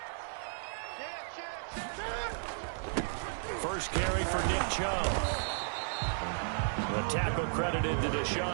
First carry for Nick Chubb. The tackle credited to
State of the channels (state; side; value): silent; left; 55 dB below the other